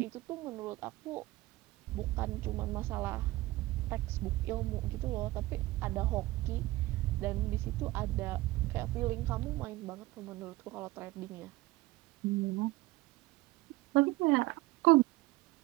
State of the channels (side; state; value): left; quieter; 19.2 dB